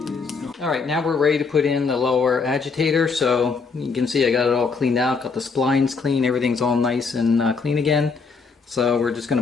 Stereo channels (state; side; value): quieter; right; 4.9 dB